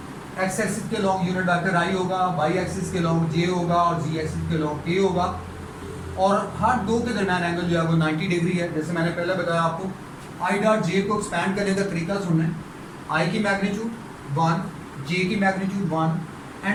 एक्स एक्सिस के लॉन्ग यूनिट वेक्टर आई होगा, वाई एक्सिस के लॉन्ग जे होगा और जी एक्सिस के लॉन्ग के होगा। और हर दो के दरमियान एंगल जो है वो 90 डिग्री है। जैसे मैंने पहले बताया आपको, आई डॉट जे को एक्सपैंड करने का तरीका सुनना है। आई की मैग्नीट्यूड 1, जे की magnitude 1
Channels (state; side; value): identical; both; correlation 1.00